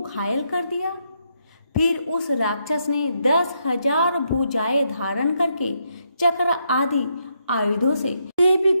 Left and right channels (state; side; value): inverted; both; correlation -0.78